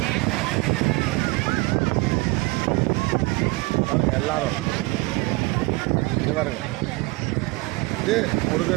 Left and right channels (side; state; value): left; quieter; 23.7 dB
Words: பாருங்க எல்லாரும் இது பாருங்க. இது